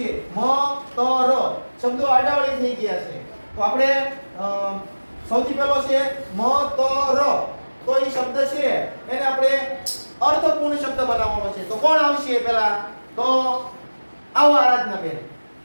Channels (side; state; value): both; inverted; correlation -1.00